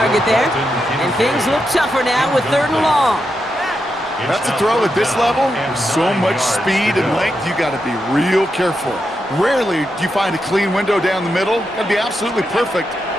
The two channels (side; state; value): both; normal; correlation 0.85